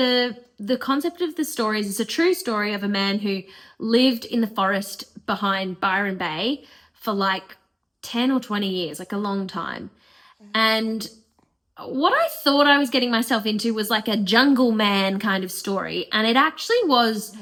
concept of the story is it's a true story of a man who lived in the forest behind Byron Bay for like 10 or 20 years, like a long time. And what I thought I was getting myself into was like a jungle man kind of story. And it actually was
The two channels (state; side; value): identical; both; correlation 1.00